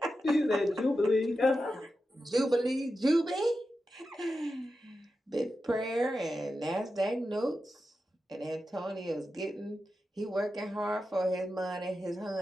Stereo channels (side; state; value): both; normal; correlation 0.90